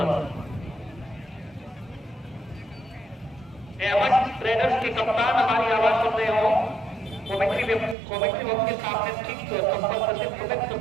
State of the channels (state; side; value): drops out; left; at 8.0 s